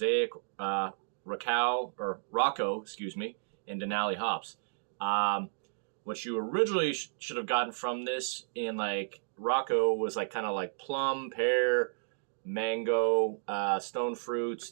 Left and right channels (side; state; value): left; silent; digital silence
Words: Rocco, and Denali hops. What you originally should have gotten from this in Rocco was kind of plum, pear, mango, stone